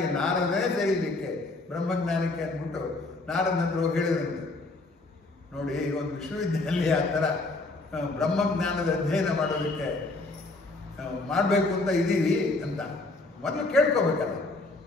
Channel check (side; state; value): right; quieter; 3.2 dB